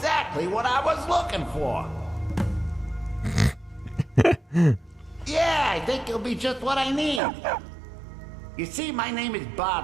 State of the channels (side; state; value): left; drops out; at 7.2 s